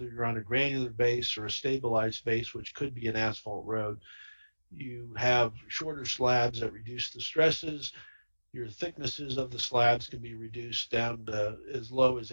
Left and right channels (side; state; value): both; inverted; correlation -1.00